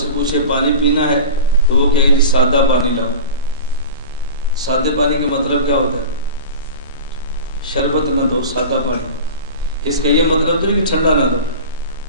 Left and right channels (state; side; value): inverted; both; correlation -0.32